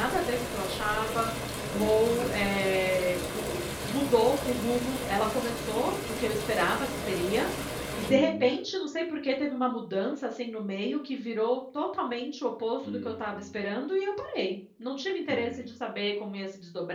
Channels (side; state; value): both; identical; correlation 1.00